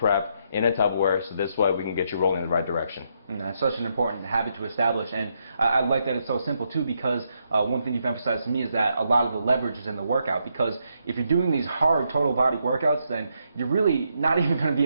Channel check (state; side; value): inverted; both; correlation -0.78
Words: in a Tupperware, so this way we can get you rolling in the right direction. It's such an important habit to establish, and I like that it's so simple too, because one thing you've emphasized to me is that a lot of the leverage is in the workout, because if you're doing these hard total body workouts, then you're really not even going to be